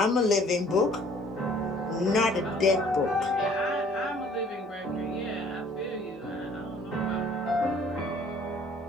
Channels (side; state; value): both; normal; correlation 0.56